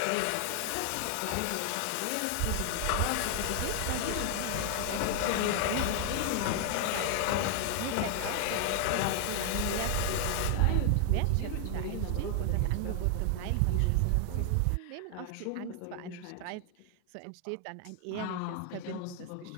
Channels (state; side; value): different; both; correlation 0.00